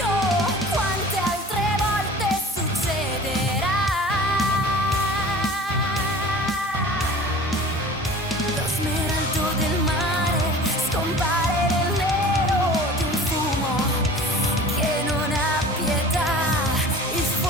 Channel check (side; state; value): both; normal; correlation 0.42